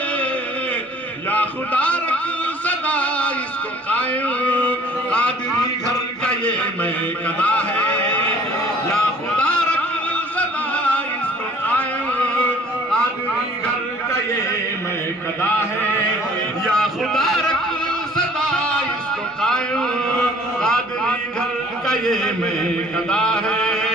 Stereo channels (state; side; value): normal; both; correlation 0.53